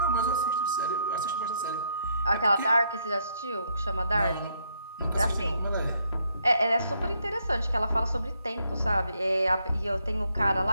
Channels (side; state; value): both; inverted; correlation -0.74